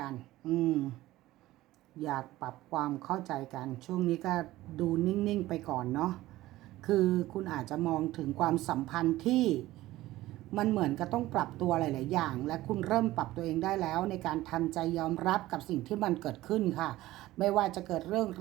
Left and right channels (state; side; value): quieter; left; 16.5 dB